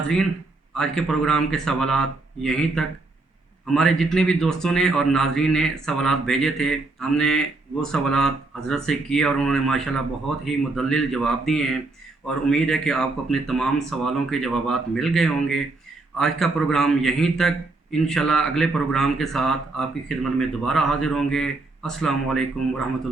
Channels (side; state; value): left; quieter; 3.3 dB